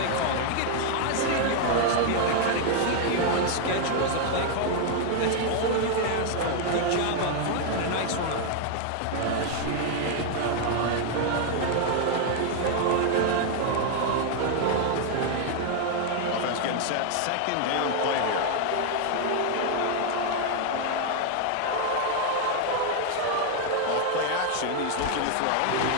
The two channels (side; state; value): both; different; correlation 0.00